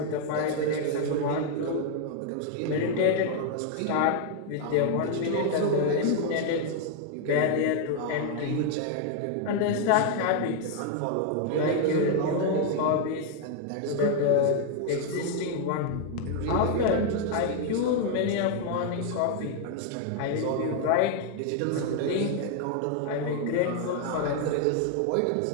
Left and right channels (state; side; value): different; both; correlation 0.00